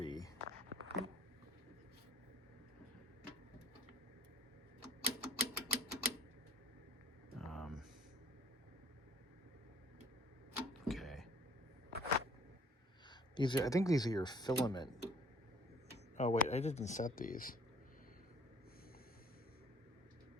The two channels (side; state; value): both; normal; correlation 0.54